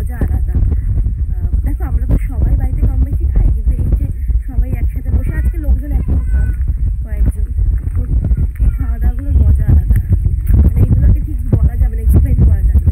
আলাদা। দেখো আমরা তো সবাই বাড়িতে কম বেশি খাই, কিন্তু এই যে সবাই একসাথে বসে, আজকে লোকজন এখন কম, কয়েকজন, এই খাওয়া দাওয়াগুলোর মজা আলাদা। মানে এইগুলোকে ঠিক বলা যাবে না, এক্সপ্লেন করা যাবে না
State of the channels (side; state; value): both; identical; correlation 1.00